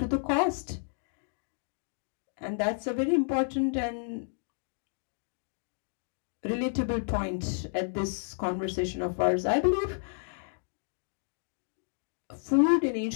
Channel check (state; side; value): silent; right; digital silence